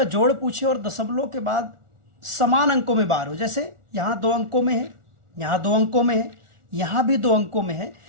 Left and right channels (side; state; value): left; late; 1.4 ms